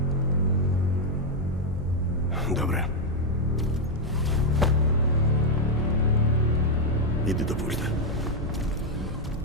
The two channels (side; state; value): both; normal; correlation 0.01